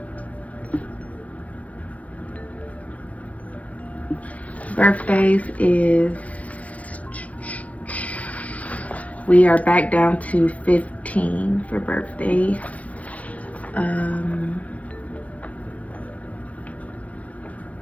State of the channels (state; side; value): late; right; 0.066 ms